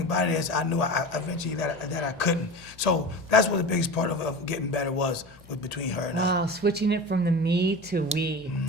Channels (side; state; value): both; normal; correlation 0.31